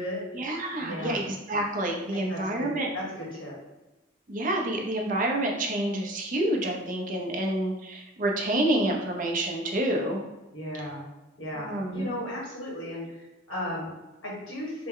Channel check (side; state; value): both; normal; correlation 0.40